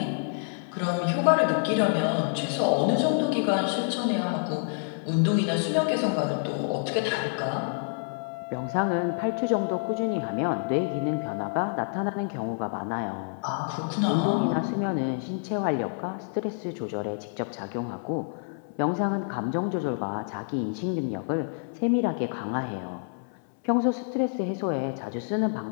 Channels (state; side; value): silent; right; 60 dB below the other